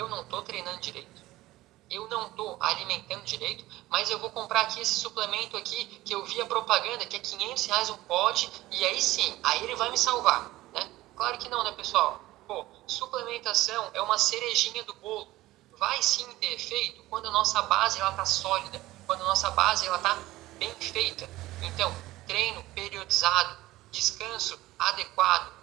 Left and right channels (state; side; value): quieter; left; 17.2 dB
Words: não estou treinando direito, eu não estou alimentando direito, mas eu vou comprar aqui esse suplemento aqui, que eu vi a propaganda, que é R$500 um pote, e aí sim, aí ele vai me salvar, né? Claro que não, né, pessoal? Suplementação é uma cerejinha do bolo. Vai sim ter efeito quando a nossa base está sólida, quando a nossa base está bem feita. Então, treino periodizado, descanso adequado,